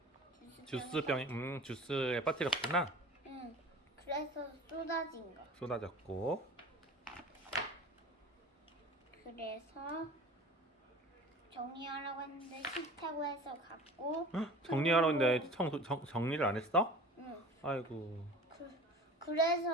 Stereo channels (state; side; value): normal; both; correlation 0.40